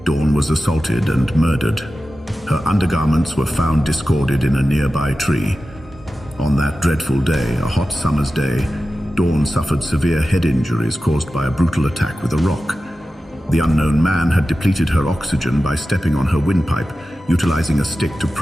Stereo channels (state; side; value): normal; both; correlation 0.93